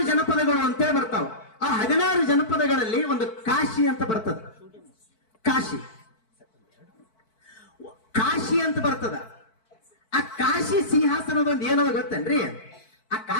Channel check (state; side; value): late; right; 4.5 ms